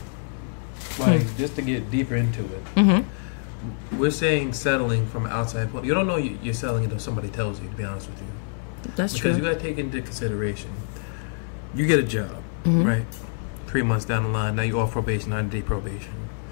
like just to get deeper into it, we're saying settling from outside point. You don't know you're selling until somebody tells you, to be honest with you. That's true. Because you got to take into consideration, you get a job, right? 3 months down the line, now you're off probation, 90-day probation.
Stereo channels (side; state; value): right; silent; digital silence